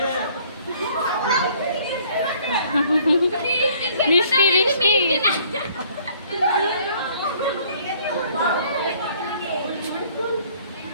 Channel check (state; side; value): inverted; both; correlation -0.59